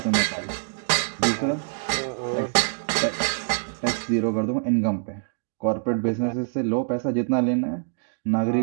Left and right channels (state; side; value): silent; left; digital silence